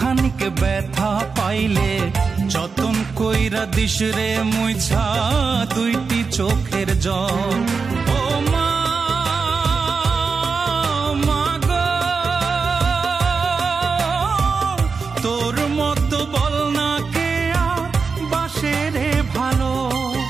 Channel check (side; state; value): left; quieter; 4.9 dB